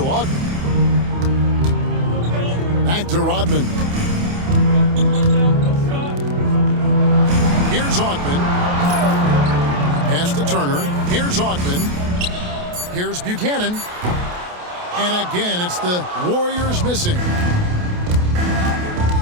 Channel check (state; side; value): late; left; 28 ms